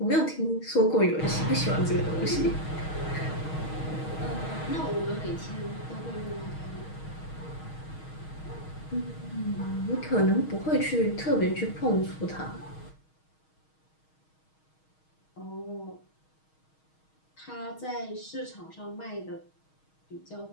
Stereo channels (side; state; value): right; late; 6.4 ms